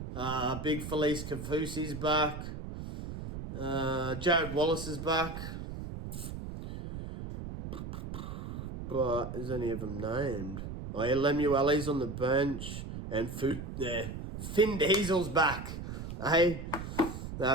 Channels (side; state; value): right; noise; rumble, 8 dB below the sound